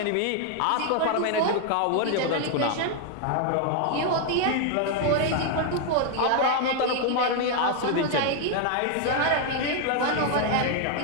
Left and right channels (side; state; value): both; different; correlation 0.00